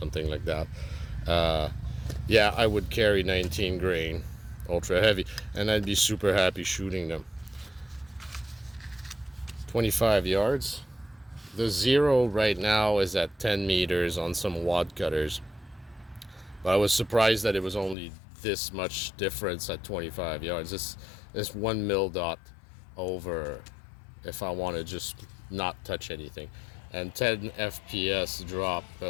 like that, yeah, I would carry 19 grain ultra heavy, and I'd be super happy shooting them. 25 yards. The zero right now is at 10 meters on some wad cutters, but I was surprised that it was only this much difference at 25 yards. This 1 mil dot over if I want to just not touch anything. And 10 FPS drop.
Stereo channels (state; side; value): drops out; right; at 17.9 s